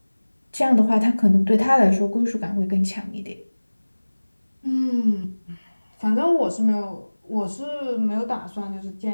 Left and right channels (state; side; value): inverted; both; correlation -1.00